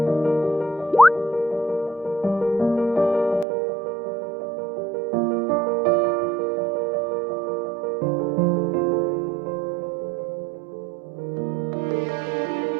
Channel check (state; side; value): drops out; left; at 3.5 s